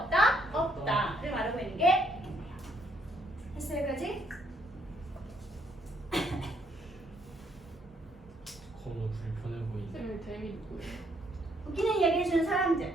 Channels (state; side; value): normal; both; correlation 0.70